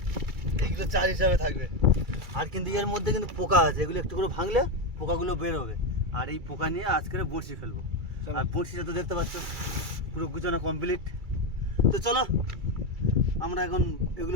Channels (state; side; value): late; left; 2.3 ms